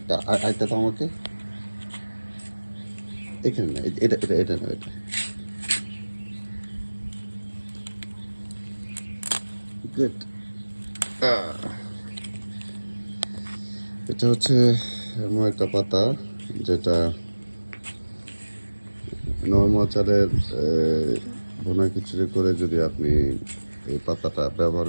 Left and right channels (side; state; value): both; inverted; correlation -1.00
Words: আরেকটা তো আমাকে এখানে না, এটা এটা এটা না, এটা গুড। এটা হচ্ছে এমন একটা পাতা যেটা নর্মাল চালের ভুনা খিচুড়ি করে যদি আপনি এই পাতাটা ব্যবহার